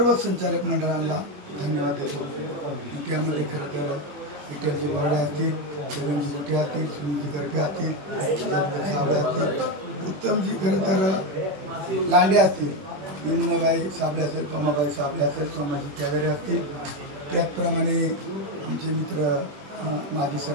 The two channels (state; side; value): late; left; 21 ms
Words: संचालक मंडळांना धन्यवाद देतो. त्यामध्ये खरं तर विठ्ठलजी बोर्डे असतील, छगनजी गुटे असतील, सुनीलजी गरपे असतील, साबळे असतील, उत्तमजी खरं तर लांडे असतील, यमुनाबाई साबळे असेल, पमाबाई साबळे असेल, सोमाजी कॅवेरे असतील, त्याचप्रमाणे आमचे मित्र माजी